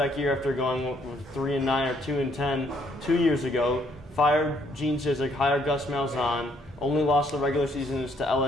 year after going with 3 and 9 or 2 and 10 2 years ago, fired Gene Chizik, hired Gus Malzahn, only lost the regular seasons to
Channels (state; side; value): normal; both; correlation 0.67